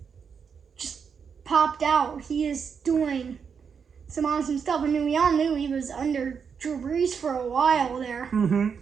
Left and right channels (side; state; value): left; quieter; 6.5 dB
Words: just popped out. He is doing some awesome stuff. I mean, we all knew he was under Drew Brees for a while there. Mm-hmm.